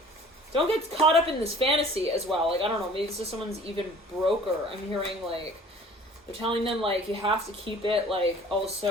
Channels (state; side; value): normal; both; correlation 0.48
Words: get caught up in this fantasy as well. Like, I don't know, maybe this is someone's even broker. I'm hearing like they're telling them like you have to keep it like